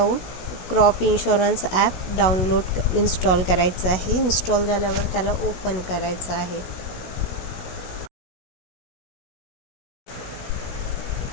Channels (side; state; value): right; late; 16 ms